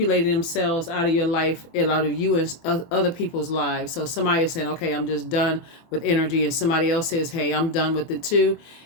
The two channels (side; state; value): right; late; 24 ms